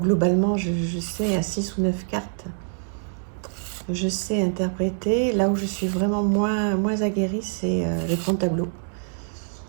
je sais à 6 ou 9 cartes, je sais interpréter. Là où je suis vraiment moins aguerrie, c'est le grand tableau.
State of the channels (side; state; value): left; silent; digital silence